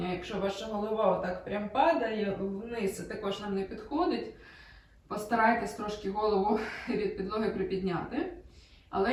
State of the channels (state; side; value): identical; both; correlation 1.00